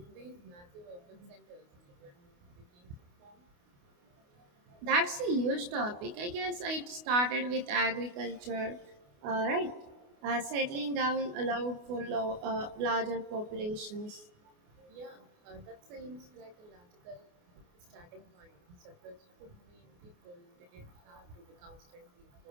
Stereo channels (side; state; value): left; late; 28 ms